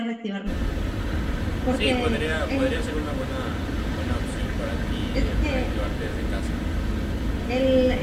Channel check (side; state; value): both; identical; correlation 1.00